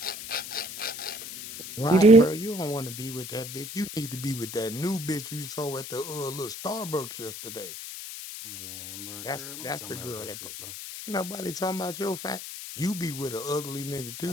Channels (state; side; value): noise; left; hiss, 9 dB below the sound